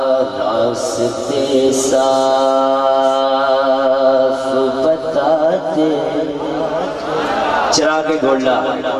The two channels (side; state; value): both; identical; correlation 1.00